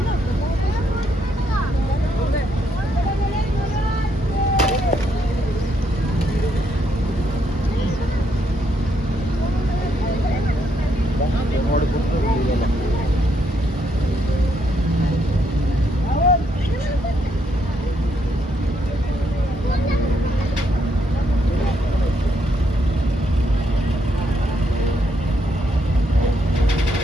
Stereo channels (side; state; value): both; normal; correlation 0.75